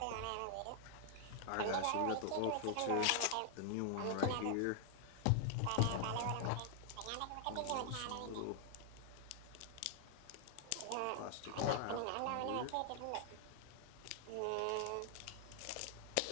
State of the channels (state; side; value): different; both; correlation 0.00